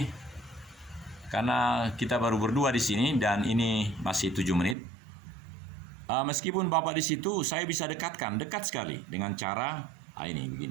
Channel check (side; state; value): left; drops out; at 4.8 s